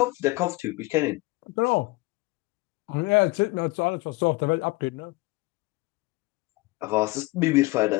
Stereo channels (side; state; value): right; quieter; 22.4 dB